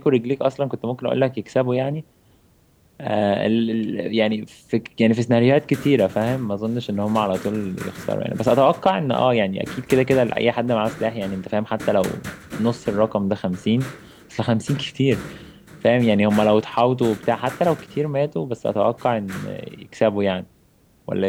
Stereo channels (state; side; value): identical; both; correlation 1.00